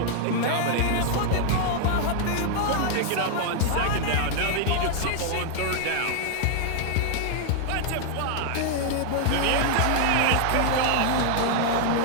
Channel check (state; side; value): different; both; correlation -0.01